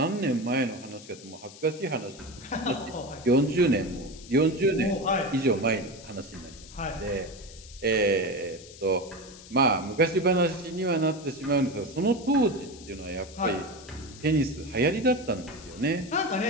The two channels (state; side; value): noise; left; hiss, 18 dB below the sound